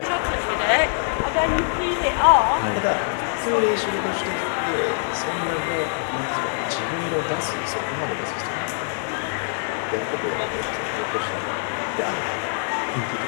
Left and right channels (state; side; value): silent; right; digital silence